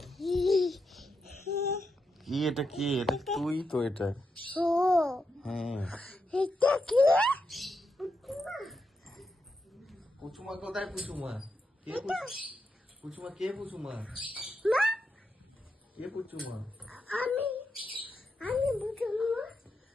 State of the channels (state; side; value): normal; both; correlation 0.85